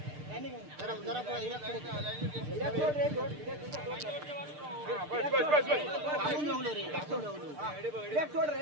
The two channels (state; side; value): late; left; 6.7 ms